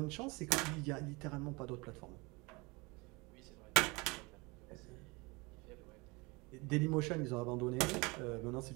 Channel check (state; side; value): quieter; left; 26.1 dB